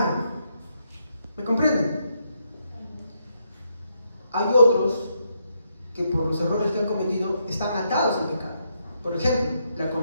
¿Me comprenden? Hay otros que por los errores que han cometido están atados al pecado. Por ejemplo, la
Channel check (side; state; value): both; inverted; correlation -0.78